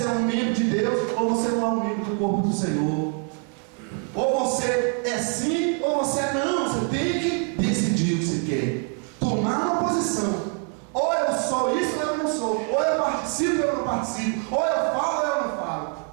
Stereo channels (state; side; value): quieter; left; 40.0 dB